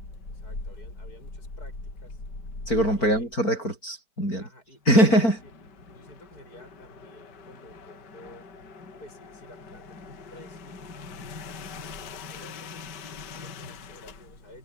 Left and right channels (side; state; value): right; late; 4.4 ms